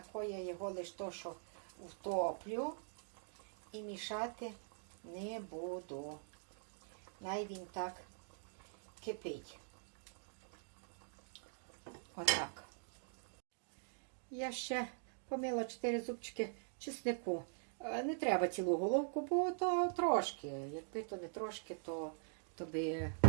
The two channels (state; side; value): silent; left; digital silence